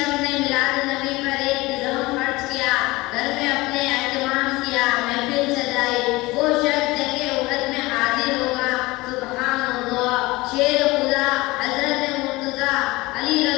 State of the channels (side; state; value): right; quieter; 21.1 dB